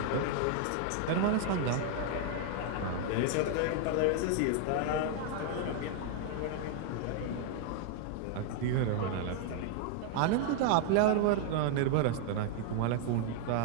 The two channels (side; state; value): both; different; correlation 0.00